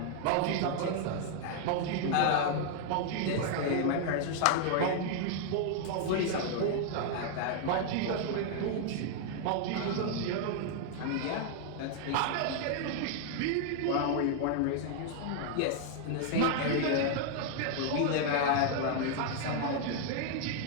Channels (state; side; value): different; both; correlation 0.00